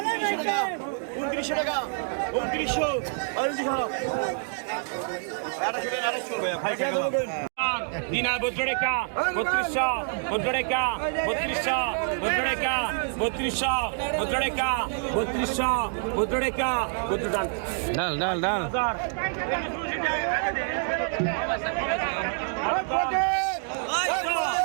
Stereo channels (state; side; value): silent; left; 60 dB below the other